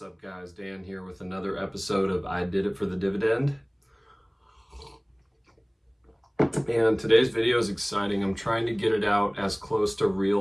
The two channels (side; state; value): both; identical; correlation 1.00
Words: guys? Dan here with another episode of I Did It for the Dividend. And today's video is exciting. I'm trying to get it out as close to